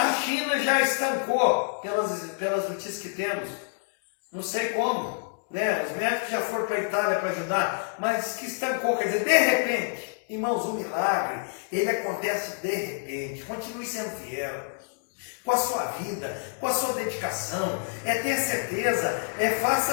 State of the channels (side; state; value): right; silent; digital silence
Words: China já estancou, pelas notícias que temos, não sei como, né? Os médicos já foram para a Itália para ajudar, mas que estancou, quer dizer, de repente, irmãos, o milagre, ele acontece de repente. Continue sendo fiel com a sua vida, com a sua dedicação, é ter certeza,